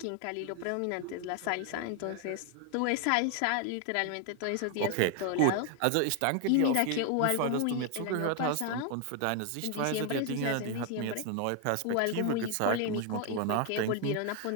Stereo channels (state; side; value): different; both; correlation 0.00